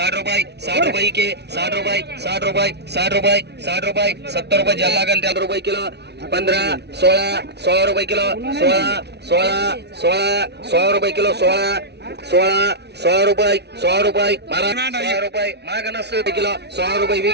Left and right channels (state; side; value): late; left; 0.49 ms